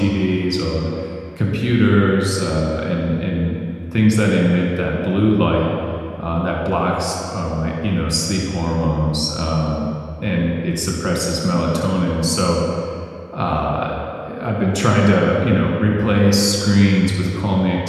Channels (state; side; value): identical; both; correlation 1.00